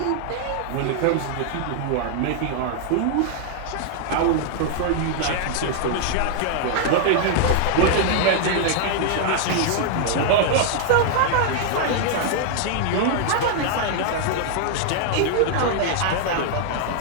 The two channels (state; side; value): different; both; correlation 0.00